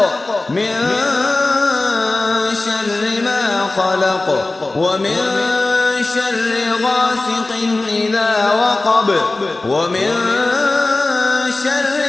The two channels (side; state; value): right; quieter; 3.1 dB